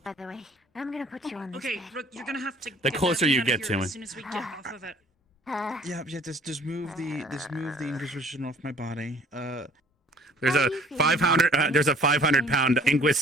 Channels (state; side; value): normal; both; correlation 0.53